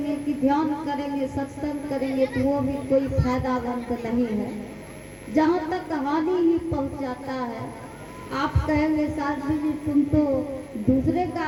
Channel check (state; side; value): identical; both; correlation 1.00